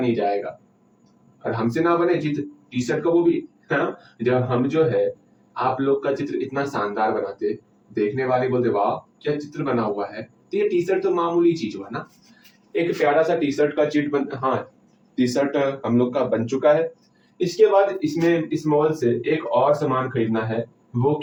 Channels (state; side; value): identical; both; correlation 1.00